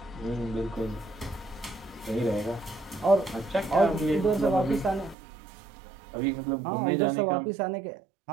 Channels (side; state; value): left; drops out; at 5.2 s